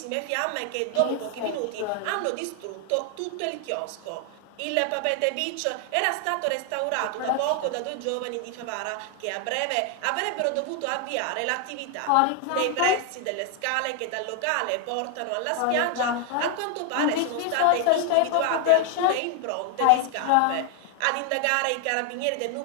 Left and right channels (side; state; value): both; different; correlation 0.00